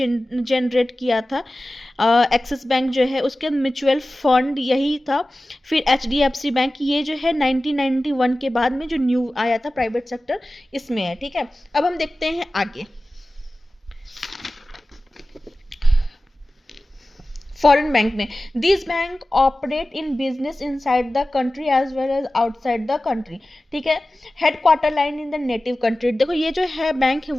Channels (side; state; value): both; normal; correlation 0.96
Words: किया था। एक्सिस बैंक जो है उसके म्यूचुअल फंड यही था। फिर एचडीएफसी बैंक, ये जो है 1991 के बाद में जो न्यू आया था प्राइवेट सेक्टर, इसमें है, ठीक है। अब हम देखते हैं आगे। फॉरेन बैंक में, this bank operate in business inside the country as well as outside the country, ठीक है। Headquarter line in the native country, देखो ये जो है बैंक है